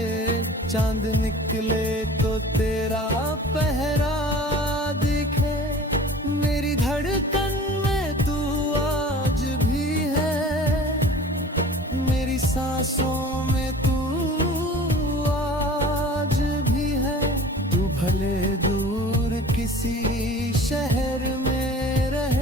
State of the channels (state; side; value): normal; both; correlation 0.43